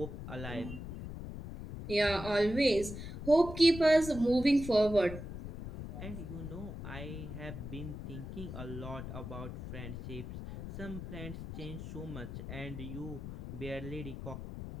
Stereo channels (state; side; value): noise; left; rumble, 8 dB below the sound